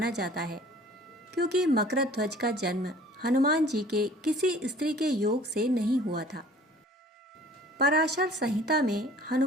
जाता है, क्योंकि मकरध्वज का जन्म हनुमान जी के किसी स्त्री के योग से नहीं हुआ था। पराशर संहिता में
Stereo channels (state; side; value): normal; both; correlation 0.50